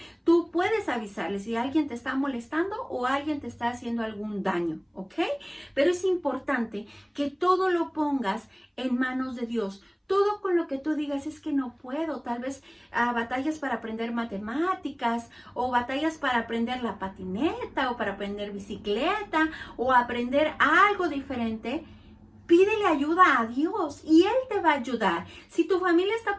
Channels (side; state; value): both; identical; correlation 1.00